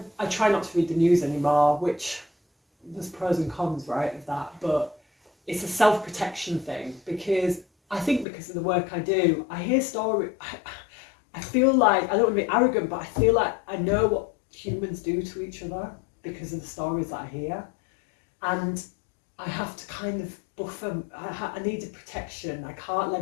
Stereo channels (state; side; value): drops out; right; at 8.2 s